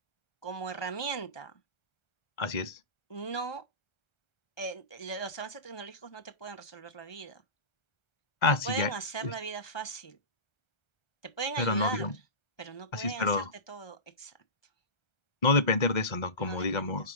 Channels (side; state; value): right; late; 1.3 ms